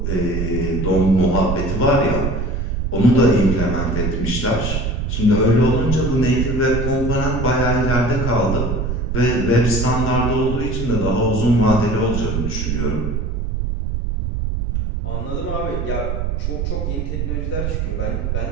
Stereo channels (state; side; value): noise; right; rumble, 2 dB below the sound